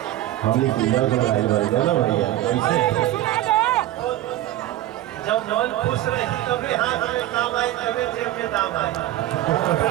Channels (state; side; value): quieter; left; 14.3 dB